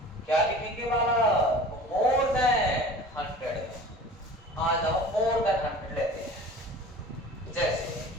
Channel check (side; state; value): both; normal; correlation 0.41